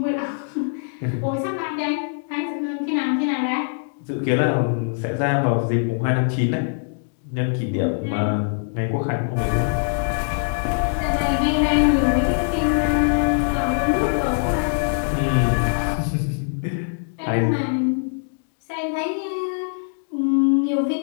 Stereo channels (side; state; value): right; silent; digital silence